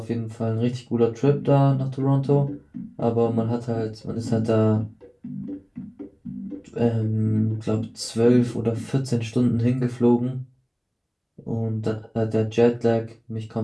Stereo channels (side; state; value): both; identical; correlation 1.00